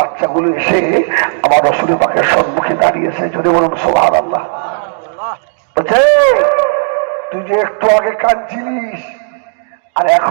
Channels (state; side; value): silent; left; digital silence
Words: এসে আমার রাসূল পাকের সম্মুখে দাঁড়িয়েছে। যদি বলুন সুবহানাল্লাহ। বলছে তুই যে একটু আগে কাঁদছিলিস আর